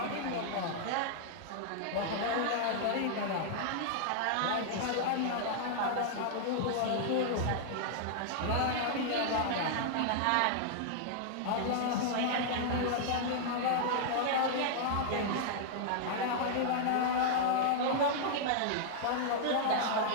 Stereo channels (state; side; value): different; both; correlation -0.01